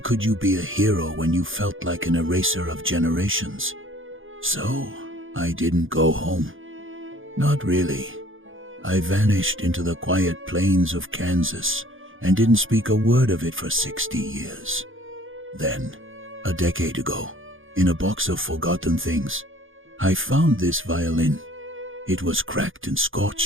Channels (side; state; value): left; late; 0.58 ms